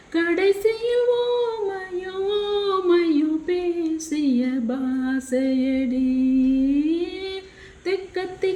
கடைசியில் ஓமையும் ஓமையும் பேசிய பாசையடி தெக்கத்தி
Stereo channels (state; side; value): identical; both; correlation 1.00